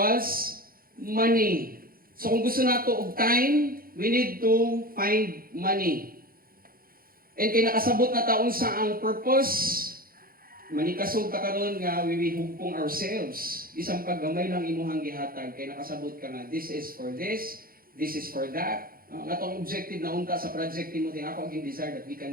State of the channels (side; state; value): left; late; 0.42 ms